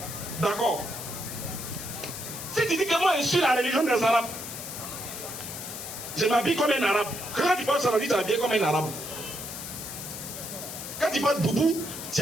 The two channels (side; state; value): left; noise; hiss, 8 dB below the sound